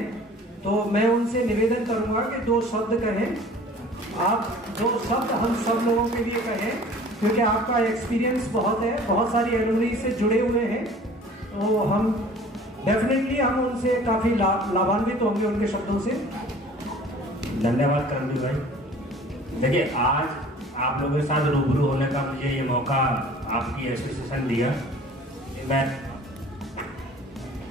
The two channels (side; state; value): both; normal; correlation 0.47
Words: तो मैं उनसे निवेदन करूंगा कि 2 शब्द कहें। आप 2 शब्द हम सब लोगों के लिए कहें, क्योंकि आपका एक्सपीरियंस बहुत है, बहुत सारी एलुमनी से जुड़े हुए हैं, तो हम डेफिनेटली हम उनसे काफी लाभान्वित होंगे उनके शब्दों से। धन्यवाद करमवीर भाई। देखिए, आज आप लोगों के साथ रूबरू होने का मुझे ये मौका आपकी एसोसिएशन दिया, मैं